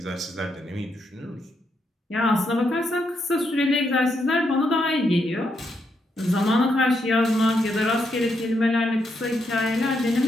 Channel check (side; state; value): both; normal; correlation 0.79